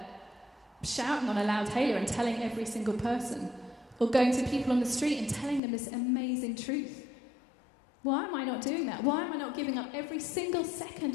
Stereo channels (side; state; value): right; drops out; at 5.6 s